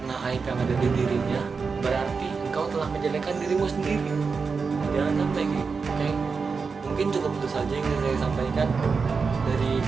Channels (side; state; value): left; quieter; 5.0 dB